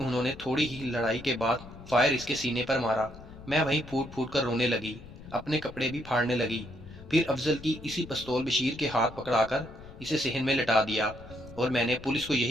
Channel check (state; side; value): noise; left; rumble, 17 dB below the sound